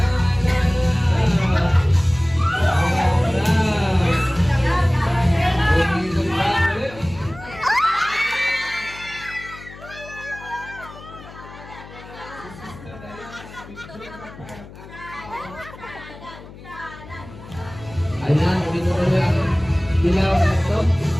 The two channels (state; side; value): noise; left; hum, 17 dB below the sound